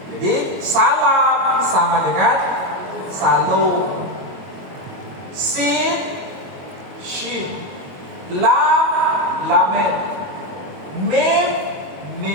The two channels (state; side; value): late; left; 22 ms